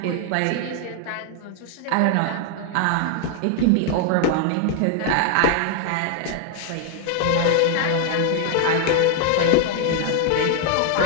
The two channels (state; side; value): different; both; correlation 0.00